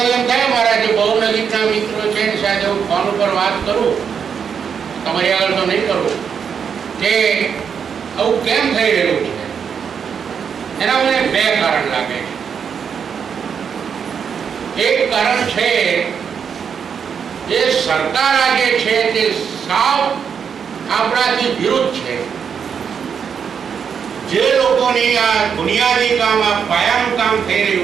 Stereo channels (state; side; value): quieter; left; 7.0 dB